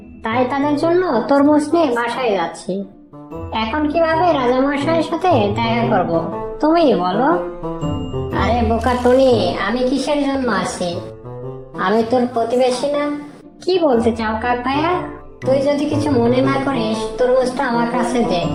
তাই তাদের জন্য তরমুজ নিয়ে বাসায় যাচ্ছি। এখন কিভাবে রাজামশাইয়ের সাথে দেখা করব তুমিই বলো। আরে বোকা টনি, আমি কিসের জন্য আছি? আমি তোর প্রতিবেশী না? কি বলতে চাও কাক ভাইয়া? তুই যদি কিছু মনে না করিস তরমুজটা আমার কাছে দে,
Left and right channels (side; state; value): both; identical; correlation 1.00